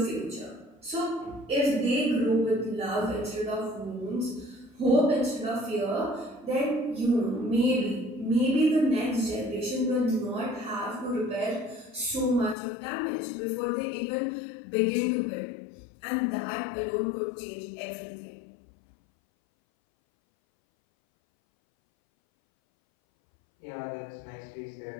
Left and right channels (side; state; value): right; drops out; at 12.6 s